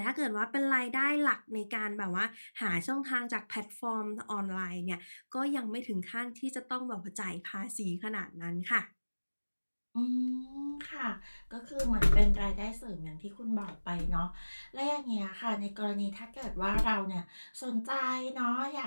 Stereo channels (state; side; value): inverted; both; correlation -1.00